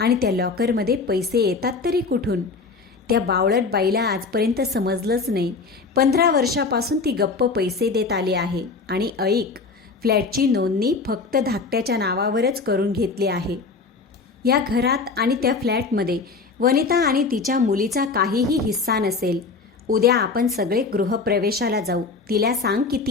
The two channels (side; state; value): right; quieter; 4.3 dB